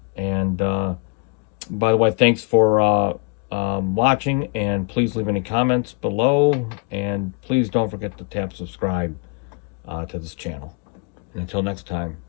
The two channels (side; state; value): right; quieter; 35.5 dB